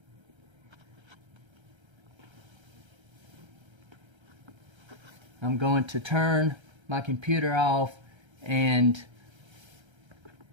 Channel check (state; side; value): late; left; 1.3 ms